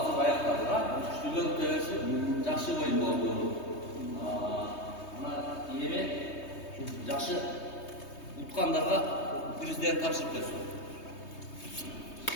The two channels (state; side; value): late; right; 3.2 ms